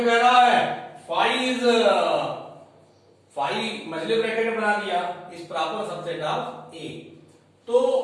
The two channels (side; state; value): both; identical; correlation 1.00